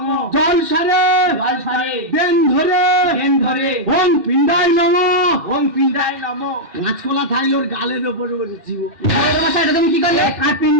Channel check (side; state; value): left; late; 2.6 ms